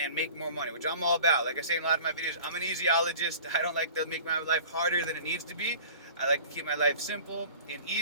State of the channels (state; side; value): inverted; both; correlation -0.44